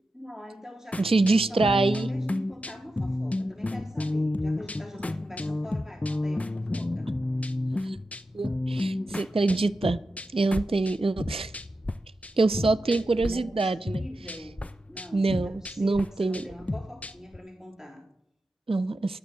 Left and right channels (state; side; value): normal; both; correlation 0.90